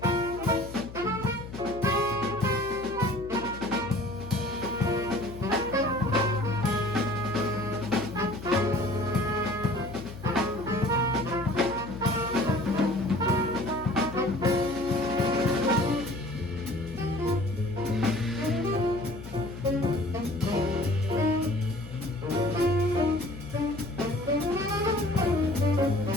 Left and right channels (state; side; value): noise; left; hum, 13 dB below the sound